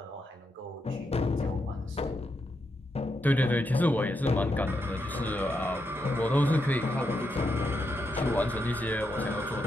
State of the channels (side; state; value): both; normal; correlation 0.83